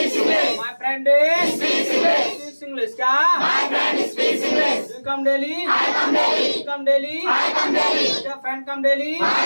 My friend speaks English. क्या? You come daily? Come daily? Friend come daily?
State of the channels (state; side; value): inverted; both; correlation -1.00